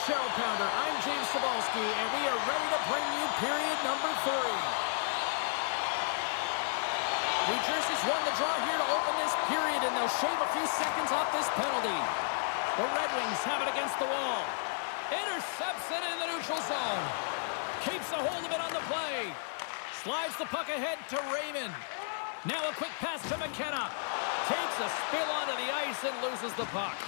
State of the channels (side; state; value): right; silent; digital silence